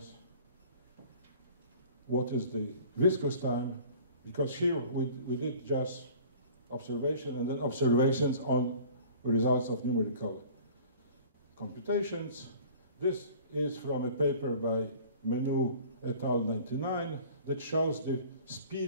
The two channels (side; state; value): both; inverted; correlation -0.47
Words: what is the viscous time, because here we did just observation and then observations on results of numerical computations. This is from a paper by Menu et al. 99 that shows the